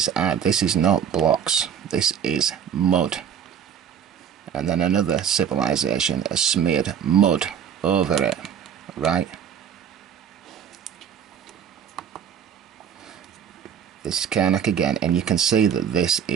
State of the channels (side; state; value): left; quieter; 8.3 dB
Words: is not blocks, this is mud. And then another civilization has smeared mud over it, right? This is Karnak again, and you can see that this